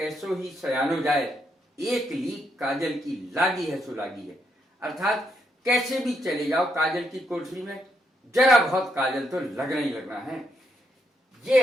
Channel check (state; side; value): normal; both; correlation 0.77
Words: ही सयानो जाए, एक लीक काजल की लागी है सो लागी है। अर्थात कैसे भी चले जाओ काजल की कोठरी में, जरा बहुत काजल तो लगना ही लगना है।